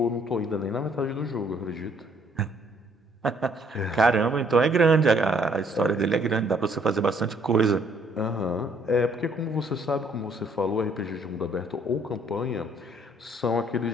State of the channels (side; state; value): both; normal; correlation 0.65